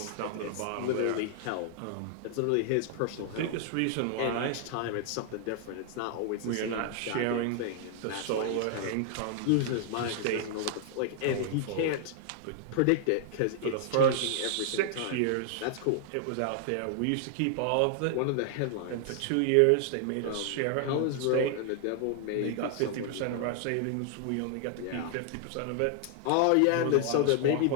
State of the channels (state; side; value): different; both; correlation 0.00